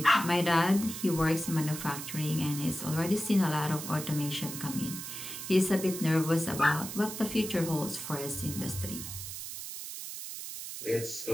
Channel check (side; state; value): right; noise; hiss, 8 dB below the sound